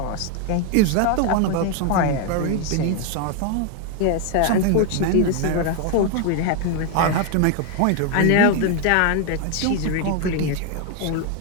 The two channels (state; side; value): different; both; correlation 0.01